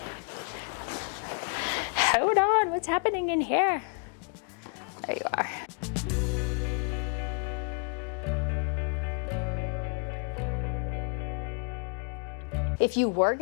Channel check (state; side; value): quieter; right; 39.4 dB